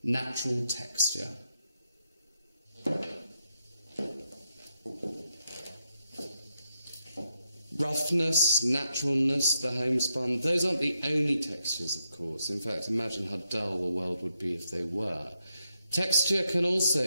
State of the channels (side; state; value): both; inverted; correlation -0.83